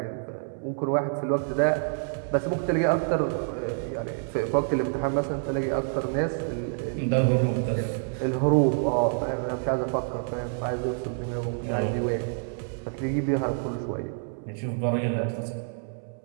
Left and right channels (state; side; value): silent; left; 60 dB below the other